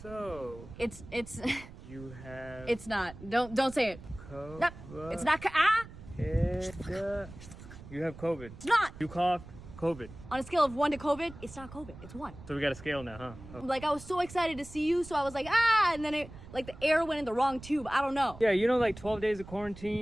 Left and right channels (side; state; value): right; noise; rumble, 16 dB below the sound